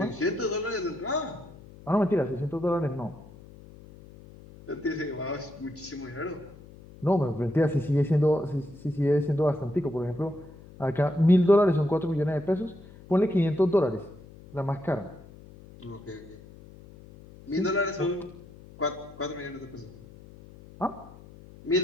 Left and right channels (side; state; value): left; noise; hum, 20 dB below the sound